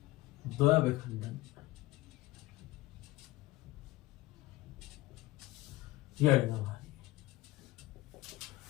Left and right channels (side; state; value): right; quieter; 18.3 dB